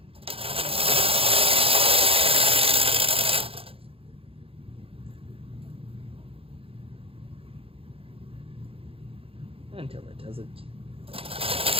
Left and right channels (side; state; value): left; late; 0.27 ms